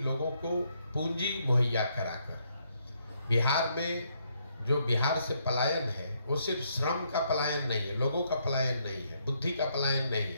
लोगों को पूंजी मुहैया कराकर। बिहार में जो बिहार से पलायन है वो सिर्फ श्रम का पलायन नहीं है, लोगों का पलायन नहीं है, बुद्धि का पलायन नहीं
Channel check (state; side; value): inverted; both; correlation -0.74